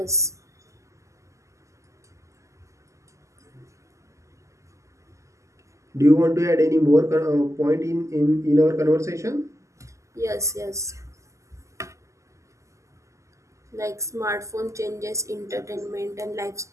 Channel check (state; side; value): late; left; 0.15 ms